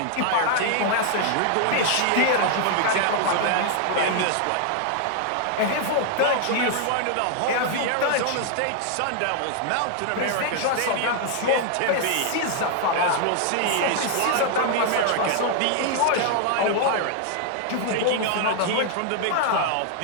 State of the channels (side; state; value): both; different; correlation 0.00